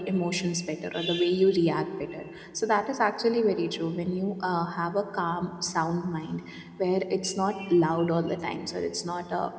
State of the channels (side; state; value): both; identical; correlation 1.00